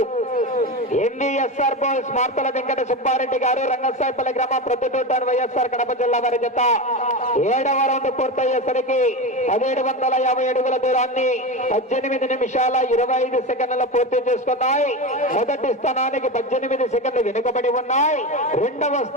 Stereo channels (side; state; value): both; normal; correlation 0.21